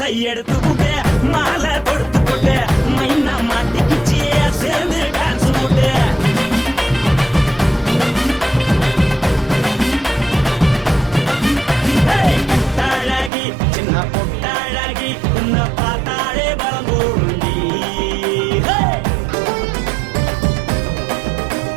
எடுத்துக்கிட்டு மாலை கொடுத்துக்கிட்டு மைனா மாட்டிக்கிச்சு சேர்ந்து டான்ஸ் போட்டு பொட்டழகி சின்ன பொட்டழகி உன்னை பார்த்தாலே பலம் கூடுண்டி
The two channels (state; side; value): drops out; left; at 13.3 s